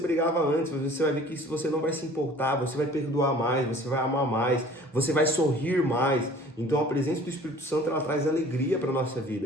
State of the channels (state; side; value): normal; both; correlation 0.49